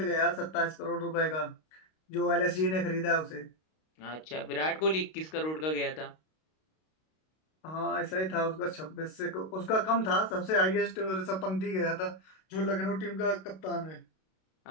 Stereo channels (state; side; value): late; right; 32 ms